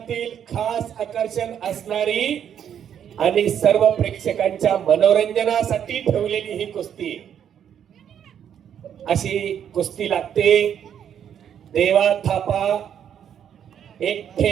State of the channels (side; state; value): left; quieter; 9.0 dB